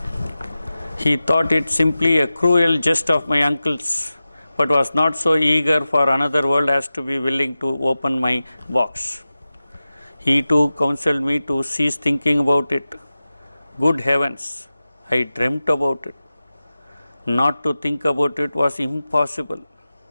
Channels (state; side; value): inverted; both; correlation -0.95